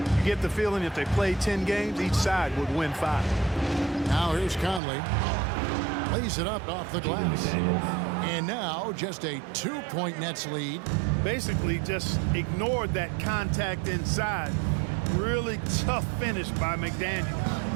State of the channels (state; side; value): drops out; left; at 4.8 s